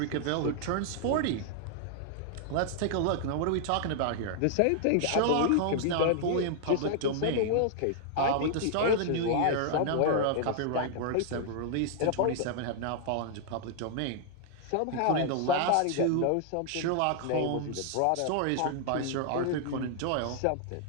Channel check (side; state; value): both; different; correlation 0.00